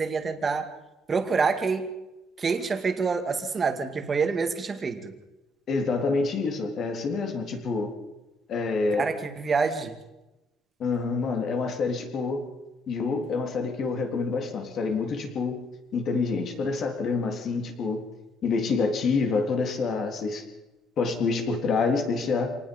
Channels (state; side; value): normal; both; correlation 0.70